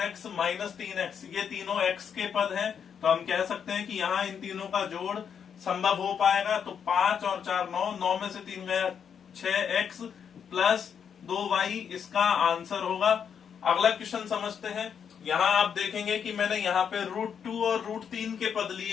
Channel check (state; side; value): quieter; right; 7.5 dB